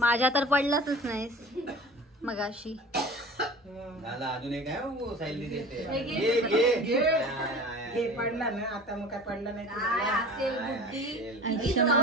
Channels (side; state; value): both; normal; correlation 0.40